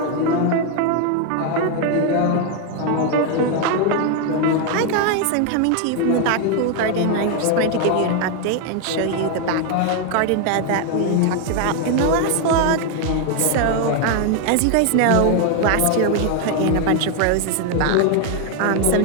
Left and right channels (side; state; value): both; different; correlation 0.01